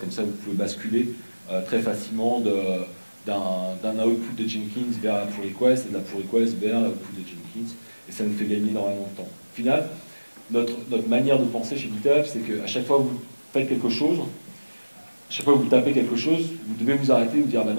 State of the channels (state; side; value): inverted; both; correlation -1.00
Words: ça, vous pouvez basculer très facilement d'un output de Jenkins vers la pull request et de la pull request vers l'output de Jenkins. Et ça nous fait gagner énormément de temps. Au final, notre manière de penser chez GitHub, c'est qu'à chaque fois que vous faites quelque chose, à chaque fois que vous tapez quelque chose, vous devez vous arrêter et vous dire bah